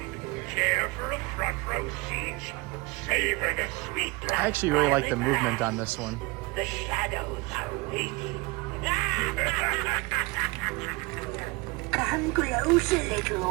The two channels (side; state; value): left; quieter; 24.2 dB